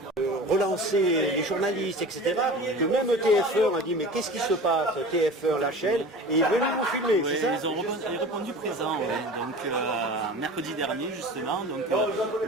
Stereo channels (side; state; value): both; normal; correlation 0.37